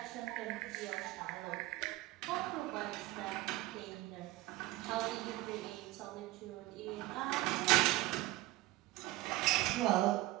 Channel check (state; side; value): quieter; left; 17.9 dB